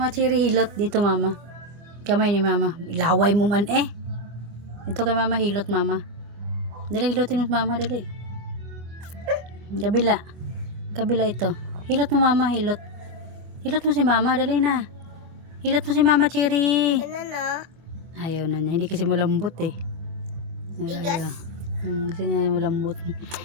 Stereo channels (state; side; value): late; left; 25 ms